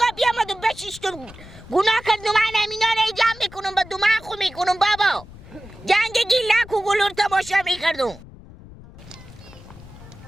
بیامد و بشیشتم گناه کردم من امینا رو جمع میکنم با دماغ خو میکنم بابا جنگ گیلک و گلور تماشا میکردم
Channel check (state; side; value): noise; left; rumble, 18 dB below the sound